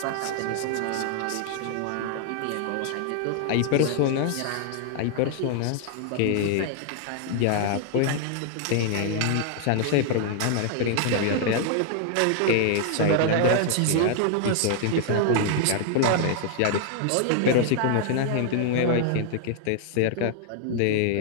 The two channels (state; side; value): different; both; correlation 0.00